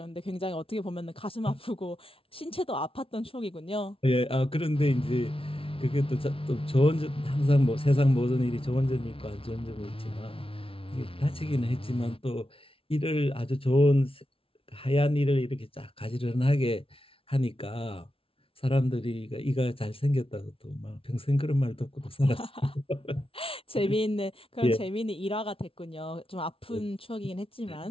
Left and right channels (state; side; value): late; right; 0.26 ms